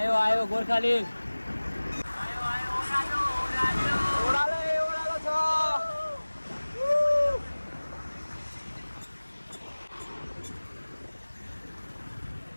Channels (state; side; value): inverted; both; correlation -1.00